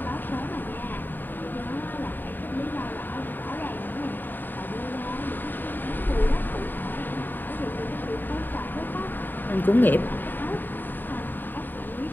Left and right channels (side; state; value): right; late; 0.091 ms